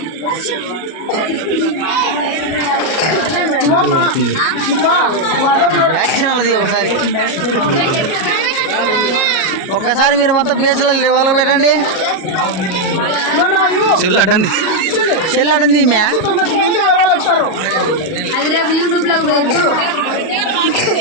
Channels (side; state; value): right; late; 37 ms